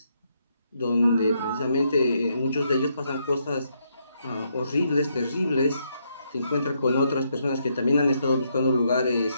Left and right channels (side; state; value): both; inverted; correlation -0.77